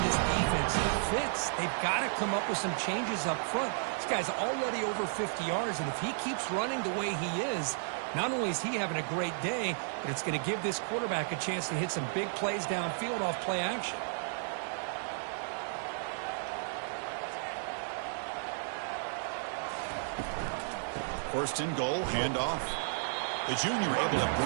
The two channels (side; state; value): left; silent; digital silence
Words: this defense fits. They've got to come up with some changes up front. This guy's already over 50 yards, and if he keeps running the way he is, not only is he having a great day, but it's going to give this quarterback a chance to hit some big plays downfield off play action. First and goal, handoff. The junior able to